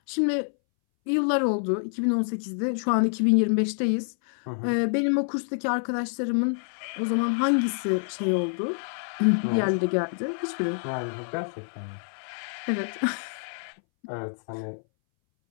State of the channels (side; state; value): right; silent; 60 dB below the other